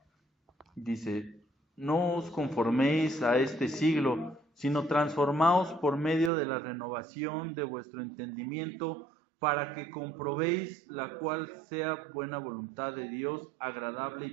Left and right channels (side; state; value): left; drops out; at 6.3 s